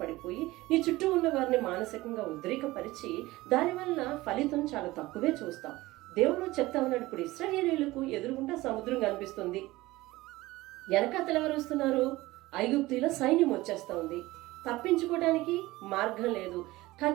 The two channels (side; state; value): left; quieter; 19.0 dB